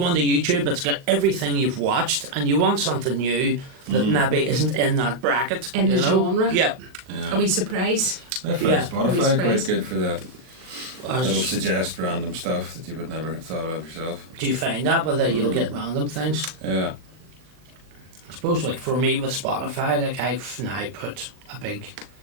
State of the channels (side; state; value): left; late; 39 ms